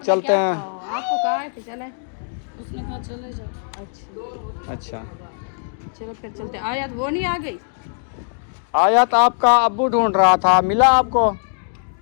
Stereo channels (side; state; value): right; silent; digital silence